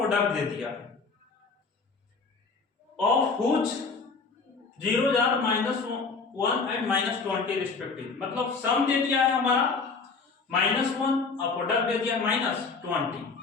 दे दिया है, of which 0 are -1 and -20 respective. मतलब सम दे दिया है हमारा -1 और प्रोडक्ट दे दिया -20।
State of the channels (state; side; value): quieter; right; 4.5 dB